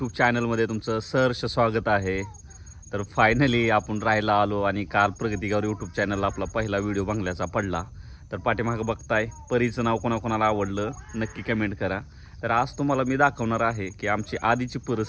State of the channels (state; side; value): identical; both; correlation 1.00